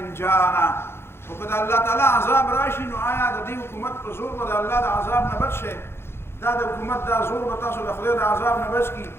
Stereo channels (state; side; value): late; right; 0.12 ms